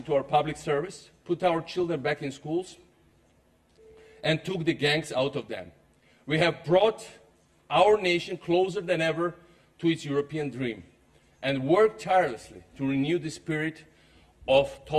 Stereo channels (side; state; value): both; identical; correlation 1.00